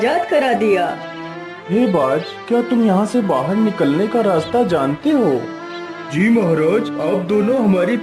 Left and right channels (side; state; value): both; identical; correlation 1.00